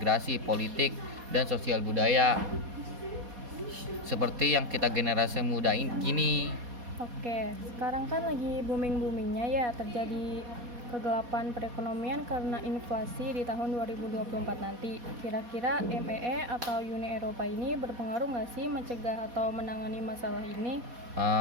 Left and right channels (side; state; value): left; late; 4.2 ms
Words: politik, dan sosial budaya. Seperti yang kita generasi muda gini. Oke, sekarang kan lagi booming-boomingnya ya terjadi kegelapan perekonomian karena inflasi di tahun 2024 nanti. Kira-kira MEE atau Uni Eropa ini berpengaruh nggak sih mencegah atau menangani masalah ini?